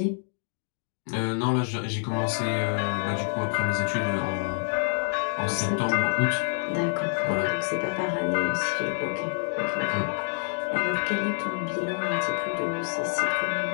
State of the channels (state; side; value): silent; right; digital silence